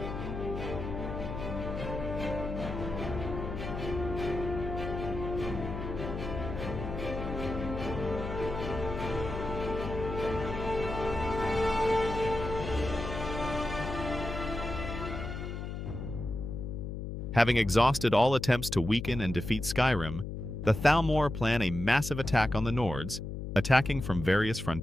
Having exhausted all attempts to weaken and defeat Skyrim, the Thalmor plan a massive attack on the Nords, attacking from various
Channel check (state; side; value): noise; left; hum, 6 dB below the sound